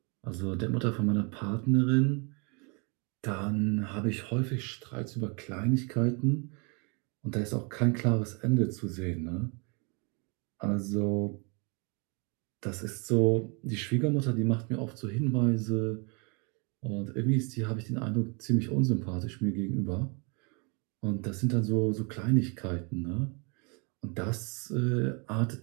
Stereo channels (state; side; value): quieter; left; 33.3 dB